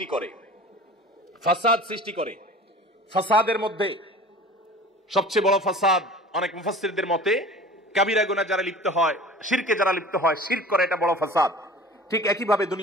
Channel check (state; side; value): normal; both; correlation 0.41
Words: করে। ফাসাদ সৃষ্টি করে, ফাসাদের মধ্যে সবচেয়ে বড় ফাসাদ অনেক মুফাসসিরদের মতে কাবিরা গুনাহ যারা লিপ্ত হয়, শিরকে যারা লিপ্ত হয়, শিরক করে, এটা বড় ফাসাদ। ঠিক একইভাবে